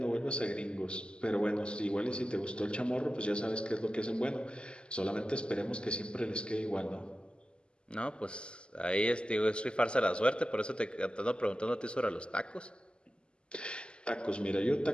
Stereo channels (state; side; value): late; right; 0.051 ms